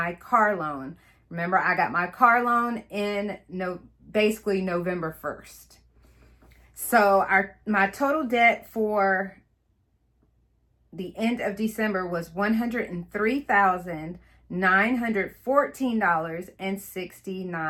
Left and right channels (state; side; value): identical; both; correlation 1.00